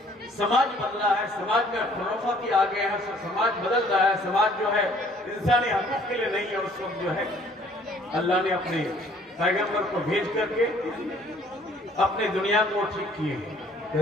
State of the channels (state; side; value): normal; both; correlation 0.58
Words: समाज बदला है, समाज में खुराफाती आ गए हैं, समाज बदल रहा है, समाज जो है इंसानी हकूक के लिए नहीं है, उस वक्त जो है अल्लाह ने अपने पैगंबर को भेज करके अपने दुनिया को ठीक किए।